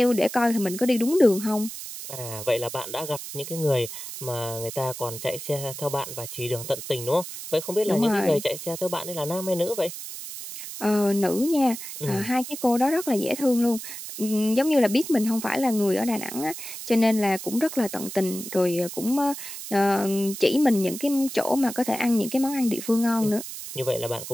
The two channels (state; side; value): noise; right; hiss, 10 dB below the sound